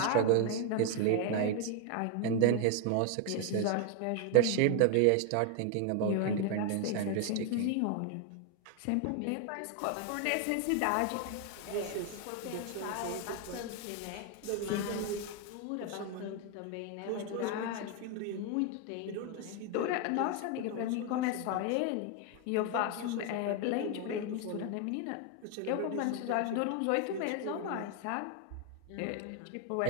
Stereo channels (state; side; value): different; both; correlation 0.01